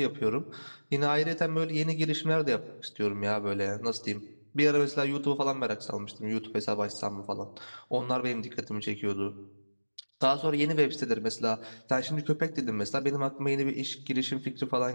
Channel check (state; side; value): inverted; both; correlation -1.00